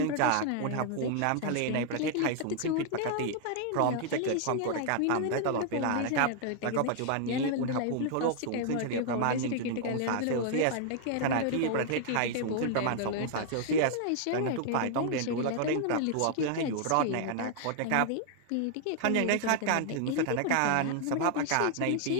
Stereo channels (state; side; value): different; both; correlation 0.00